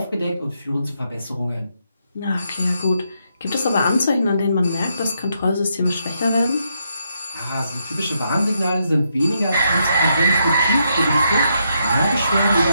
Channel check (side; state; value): both; inverted; correlation -0.79